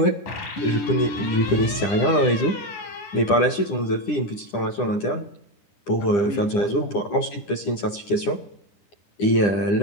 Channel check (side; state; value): right; late; 9.9 ms